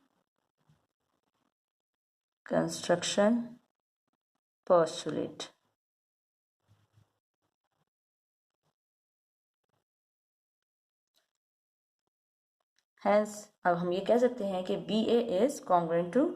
construction postulate. Hence, अब हम ये कह सकते हैं कि B A is congruent to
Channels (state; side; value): identical; both; correlation 1.00